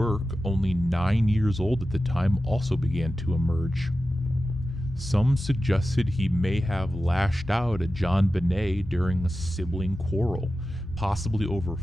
only 9 years old at the time, also began to emerge. Some suggested he may have lashed out at JonBenét during a sibling quarrel, possibly over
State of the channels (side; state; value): both; normal; correlation 0.93